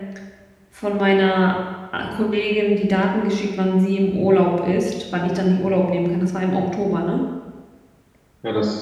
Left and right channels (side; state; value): both; identical; correlation 1.00